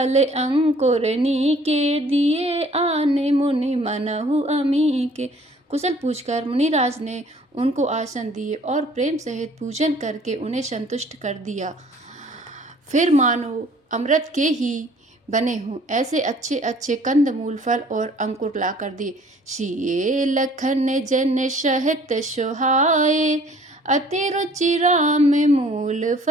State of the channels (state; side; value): normal; both; correlation 0.55